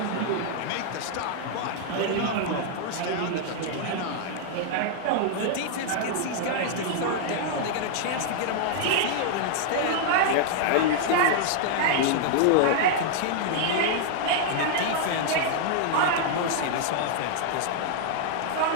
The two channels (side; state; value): both; different; correlation -0.01